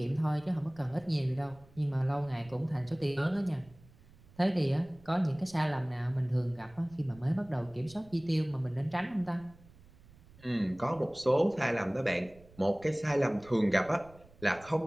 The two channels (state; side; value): noise; right; rumble, 24 dB below the sound